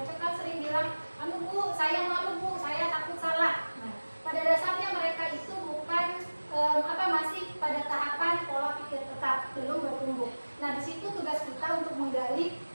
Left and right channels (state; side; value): inverted; both; correlation -1.00